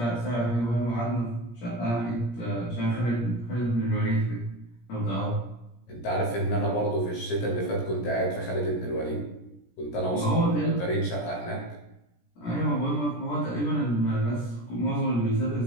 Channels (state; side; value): late; right; 17 ms